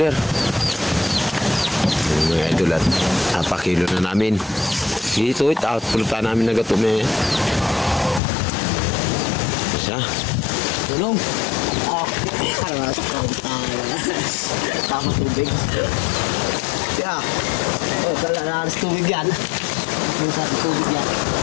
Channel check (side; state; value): right; drops out; at 8.2 s